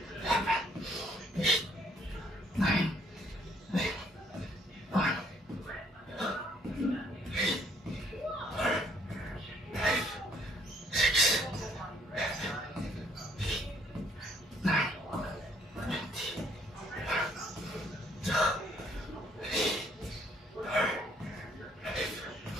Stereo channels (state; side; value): normal; both; correlation 0.65